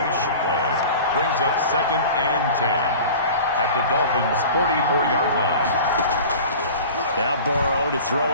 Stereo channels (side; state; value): both; inverted; correlation -0.39